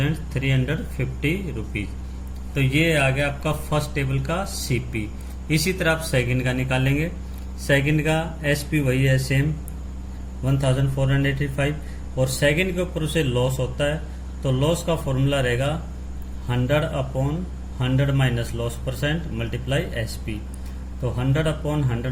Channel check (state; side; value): identical; both; correlation 1.00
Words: रुपीज। तो ये आ गया आपका फर्स्ट टेबल का सीपी। इसी तरह आप सेकंड का निकालेंगे। सेकंड का एसपी वही है सेम 1485 और सेकंड के ऊपर उसे लॉस होता है, तो तो लॉस का फॉर्मूला रहेगा 100/100 minus loss percent multiply SP। तो